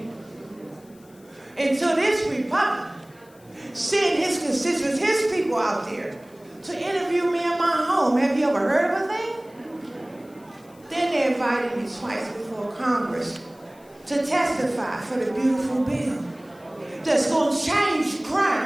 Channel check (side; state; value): left; noise; hiss, 29 dB below the sound